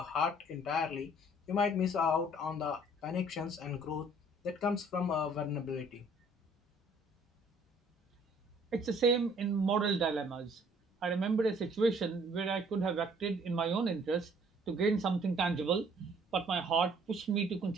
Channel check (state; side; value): normal; both; correlation 0.59